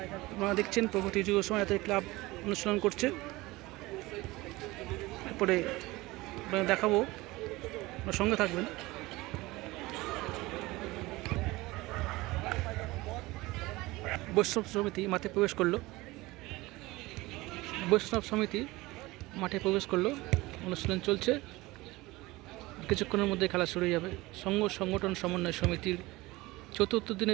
আপনারা দেখছেন প্রগতি যুব সমাজ অ্যাথলেটিক ক্লাব অনুশীলন করছে। এরপরে আপনারা দেখাবো, আপনার সঙ্গে থাকবেন। বৈষ্ণব সমিতি মাঠে প্রবেশ করলো। অনুশীলন চলছে। কিছুক্ষণের মধ্যে খেলা শুরু হয়ে যাবে। সংঘ সংগঠন সমন্বয় সমিতির চতুর্থ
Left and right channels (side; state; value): left; quieter; 20.5 dB